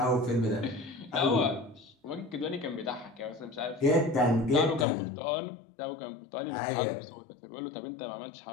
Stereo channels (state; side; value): drops out; right; at 4.9 s